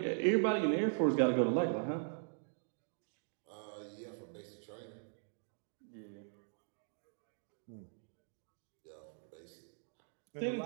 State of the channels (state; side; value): silent; left; digital silence